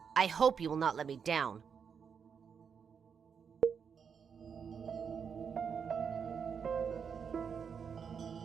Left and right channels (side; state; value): left; quieter; 6.7 dB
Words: I hope you will not let me down.